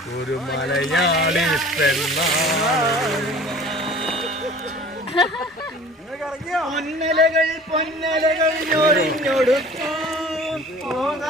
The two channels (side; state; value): both; normal; correlation 0.45